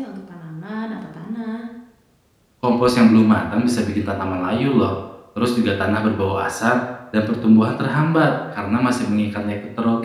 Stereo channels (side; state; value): both; identical; correlation 1.00